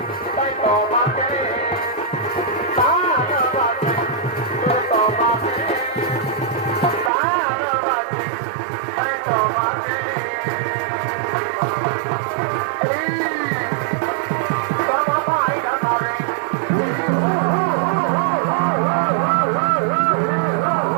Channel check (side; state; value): left; drops out; at 7.1 s